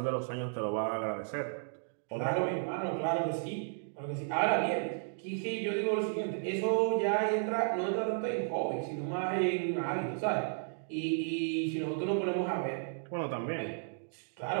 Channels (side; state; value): left; silent; digital silence